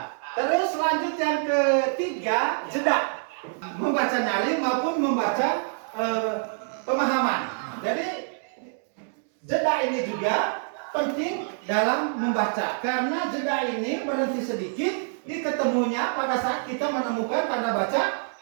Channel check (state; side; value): silent; left; 61 dB below the other